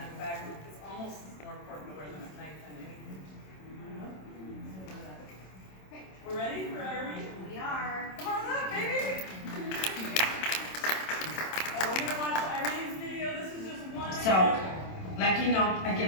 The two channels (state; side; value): late; right; 27 ms